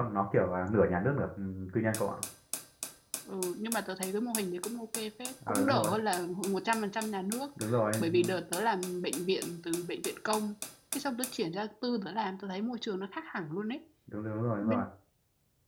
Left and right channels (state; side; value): identical; both; correlation 1.00